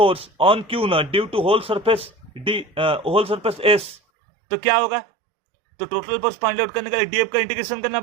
on q not due to whole surface s, तो क्या होगा? तो टोटल फोर्स फाइंड आउट करने के लिए डीएफ का इंटीग्रेशन करना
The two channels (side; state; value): left; drops out; at 4.0 s